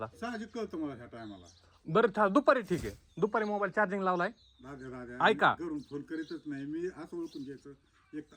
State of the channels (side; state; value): both; identical; correlation 1.00